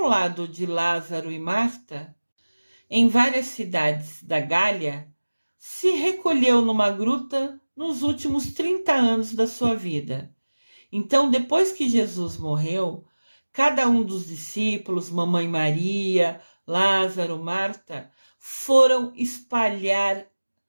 lado de Lázaro e Marta, em várias cidades da Gália, se recolheu numa gruta nos últimos 30 anos da sua vida. Então, depois que Jesus morreu, cada um dos discípulos, Mamãe Maria, Lázaro, Marta, foram espalhar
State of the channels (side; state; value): both; inverted; correlation -1.00